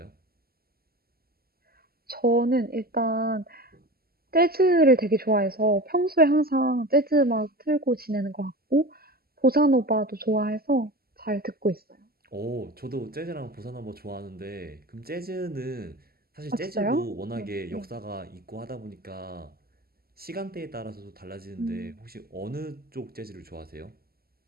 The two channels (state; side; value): late; left; 0.45 ms